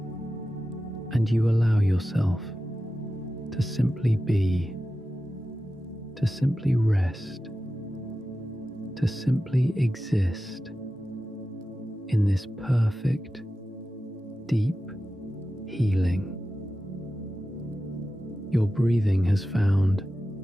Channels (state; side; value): normal; both; correlation 0.93